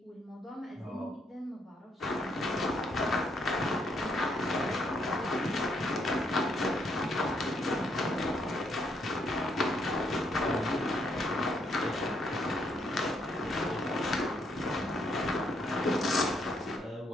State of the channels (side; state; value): both; normal; correlation 0.73